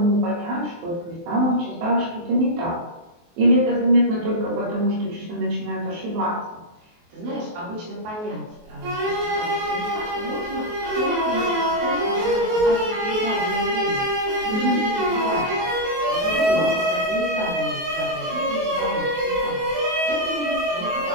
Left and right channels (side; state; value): left; late; 23 ms